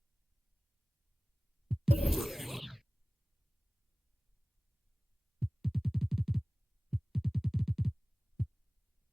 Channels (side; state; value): both; normal; correlation 0.98